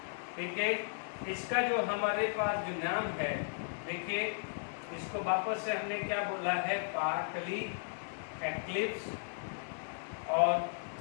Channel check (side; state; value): right; silent; digital silence